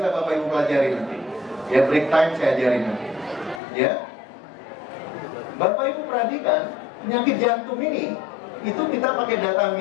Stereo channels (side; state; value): right; drops out; at 3.6 s